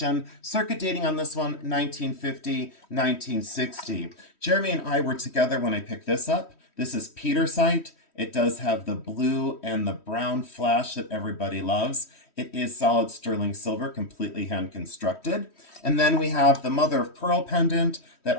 circuit dating on this one, 1950, 1960. Jeremy and I were together when I picked this up. This is petersite. It does have the blue and the brown flash that everybody loves. It is solid sterling silver, completely hand constructed. And then we have the mother of pearl pendant that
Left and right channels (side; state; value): right; late; 3.1 ms